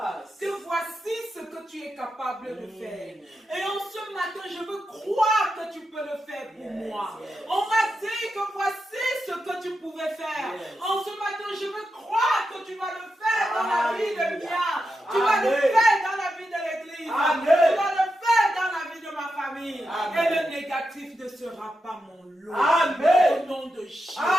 que voici ce que tu es capable de Mm. faire. Et en ce matin, je veux croire que tu peux le faire pour Yes, moi. yes. On m'a dit que voici ce que tu pouvais faire. Yes. En ce matin, je veux croire que tu vas le faire dans la vie de Alléluia. Mia. Tu vas le Amen. faire dans la vie de l'église. Amen. Tu vas le faire dans la vie de ma famille. Amen. Et le négatif ne sera pas mon lot. Amen. Au nom de Jésus.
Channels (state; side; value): normal; both; correlation 0.87